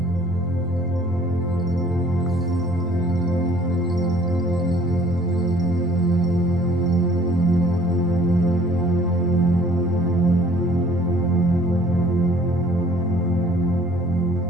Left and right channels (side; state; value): both; normal; correlation 0.55